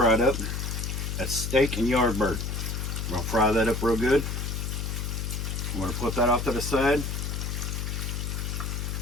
up. That's steak and yard bird. We're gonna fry that up real good. I'm gonna put that off to the side.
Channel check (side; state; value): left; noise; hum, 3 dB below the sound